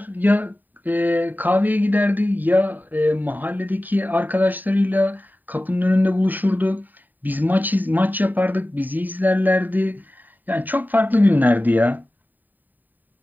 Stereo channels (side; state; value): left; late; 0.088 ms